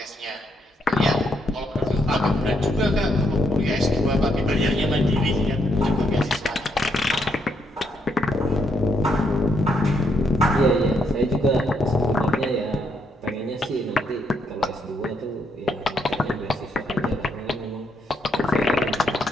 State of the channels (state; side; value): normal; both; correlation 0.76